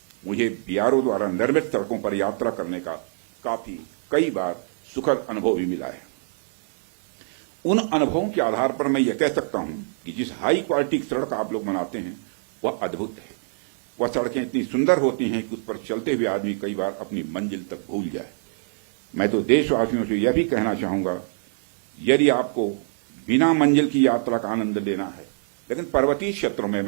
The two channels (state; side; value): silent; left; digital silence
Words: मुझे बीआरओ द्वारा निर्मित सड़कों पर यात्रा करने का कई बार सुखद अनुभव भी मिला है। उन अनुभवों के आधार पर मैं यह कह सकता हूं कि जिस हाई क्वालिटी की सड़क आप लोग बनाते हैं वह अद्भुत है। वह सड़कें इतनी सुंदर होती हैं कि उस पर चलते हुए आदमी कई बार अपनी मंजिल तक भूल जाए। मैं तो देशवासियों से यह भी कहना चाहूंगा, यदि आपको बिना मंजिल की यात्रा का आनंद लेना है, लेकिन पर्वतीय क्षेत्रों में,